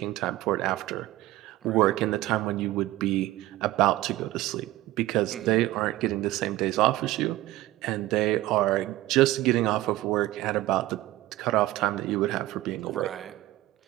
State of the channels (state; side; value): quieter; left; 16.7 dB